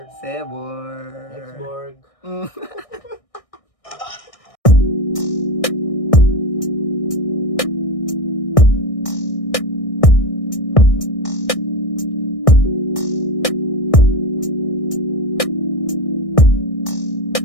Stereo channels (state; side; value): late; right; 1.6 ms